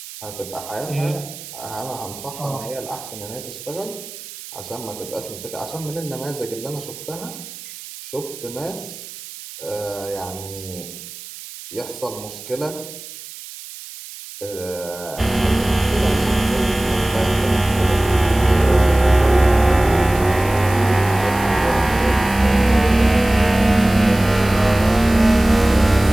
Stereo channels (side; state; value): right; noise; hiss, 15 dB below the sound